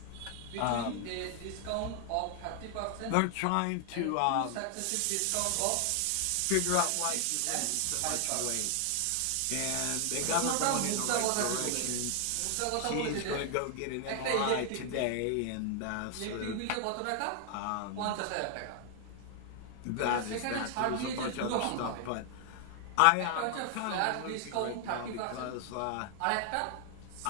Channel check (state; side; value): different; both; correlation 0.00